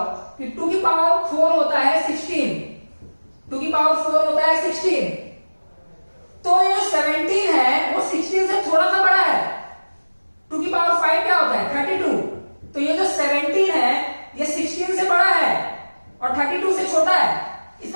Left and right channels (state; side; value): inverted; both; correlation -1.00